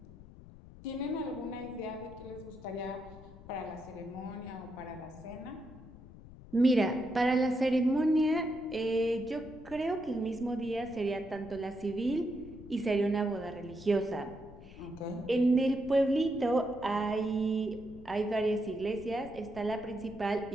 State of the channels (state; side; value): noise; left; rumble, 18 dB below the sound